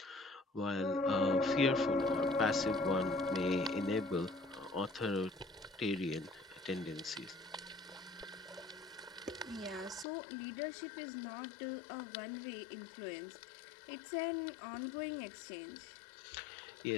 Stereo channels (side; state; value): right; drops out; at 10.1 s